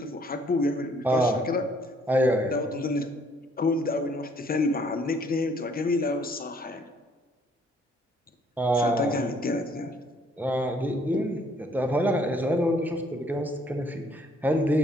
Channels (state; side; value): normal; both; correlation 0.64